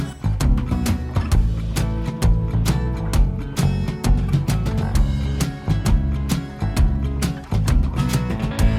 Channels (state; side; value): identical; both; correlation 1.00